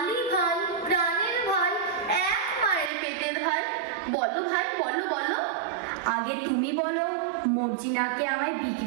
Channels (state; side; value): drops out; left; at 2.9 s